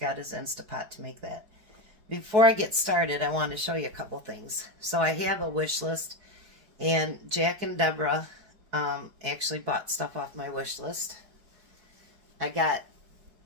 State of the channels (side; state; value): left; late; 4.7 ms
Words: his Instapot to make that. Before I get started, I want to show you a couple things. So I have a wish list, and Jack and Deborah actually bought stuff off my wish list. I got